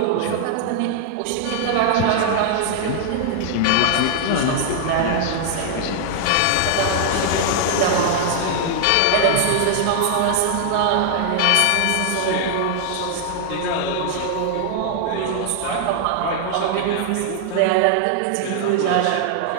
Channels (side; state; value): both; different; correlation 0.00